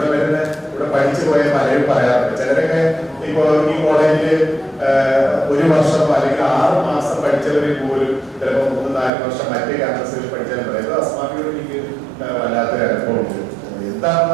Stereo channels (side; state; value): left; drops out; at 9.1 s